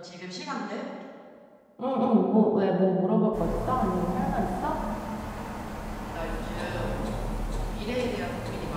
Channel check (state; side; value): identical; both; correlation 1.00